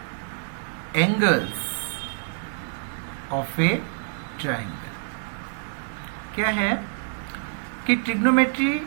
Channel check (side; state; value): left; silent; 55 dB below the other